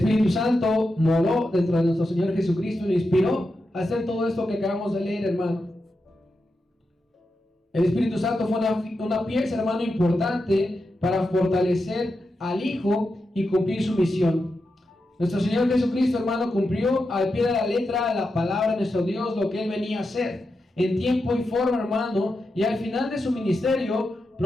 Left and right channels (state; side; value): normal; both; correlation 0.88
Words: Santo moró dentro de nuestro Señor Jesucristo y lo inspiró a hacer todo esto que acabamos de leer, hermano. El Espíritu Santo fue una pieza, hermano, importante para fortalecer al Hijo y cumplir su misión. Nuestro Señor Jesucristo, hermano, cumplió al pie de la letra la palabra de nuestro Dios, lo que Él venía a hacer, en tiempo y forma, hermano, y al final de su ministerio